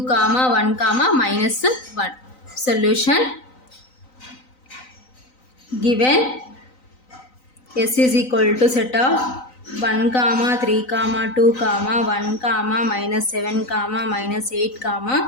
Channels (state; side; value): late; right; 3.9 ms